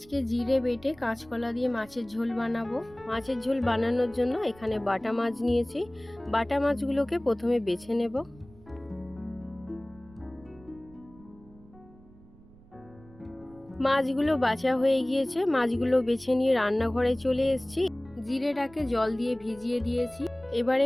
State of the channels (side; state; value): right; noise; rumble, 24 dB below the sound